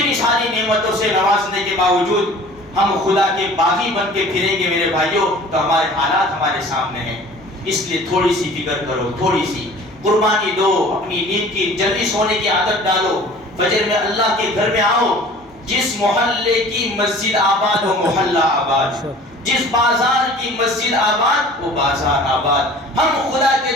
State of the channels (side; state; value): both; normal; correlation 0.46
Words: ساری نعمتوں سے نوازنے کے باوجود ہم خدا کے باغی بن کے پھریں گے میرے بھائیوں, تو ہمارے حالات ہمارے سامنے ہیں. اس لیے تھوڑی سی فکر کرو, تھوڑی سی قربانی دو, اپنی نیند کی جلدی سونے کی عادت ڈالو, فجر میں اللہ کے گھر میں آؤ. جس محلے کی مسجد آباد وہ محلہ آباد, جس بازار کی مسجد آباد وہ بازار آباد. ہم خدا کے